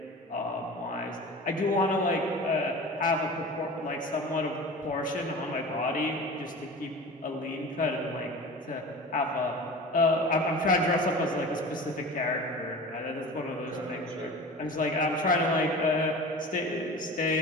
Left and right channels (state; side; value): normal; both; correlation 0.35